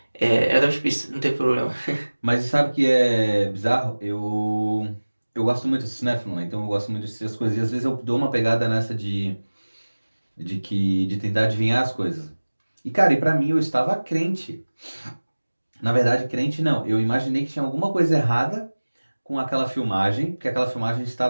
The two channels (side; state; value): both; inverted; correlation -1.00